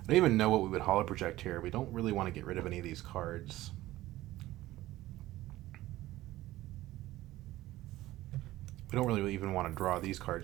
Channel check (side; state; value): left; quieter; 16.3 dB